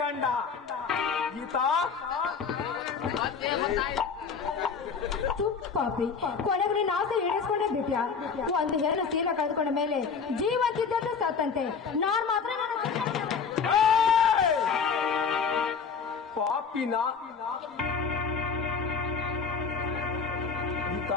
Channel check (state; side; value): quieter; right; 5.8 dB